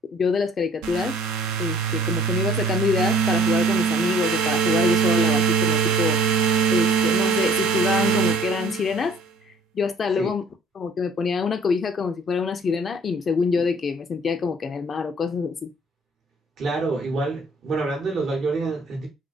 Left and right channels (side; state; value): both; normal; correlation 0.55